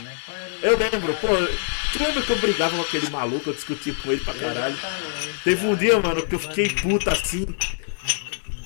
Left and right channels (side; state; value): right; silent; digital silence